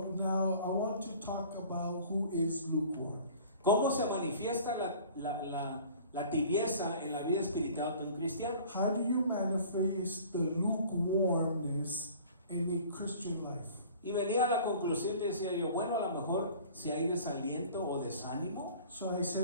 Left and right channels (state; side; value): inverted; both; correlation -0.47